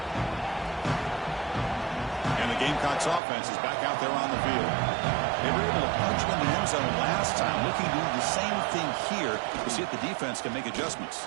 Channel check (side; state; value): left; drops out; at 3.2 s